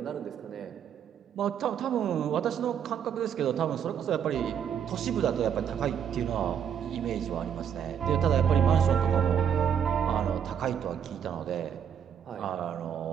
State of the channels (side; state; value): left; quieter; 8.3 dB